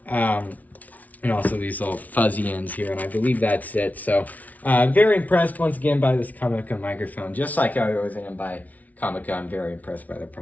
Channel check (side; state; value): right; late; 0.073 ms